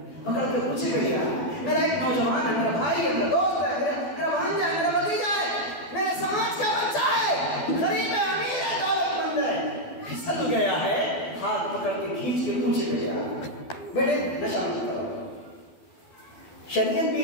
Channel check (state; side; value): late; right; 12 ms